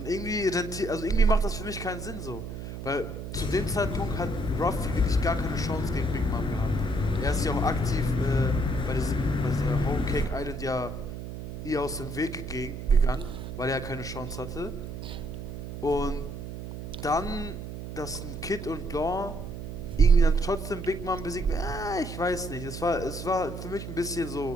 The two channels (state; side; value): noise; right; hum, 8 dB below the sound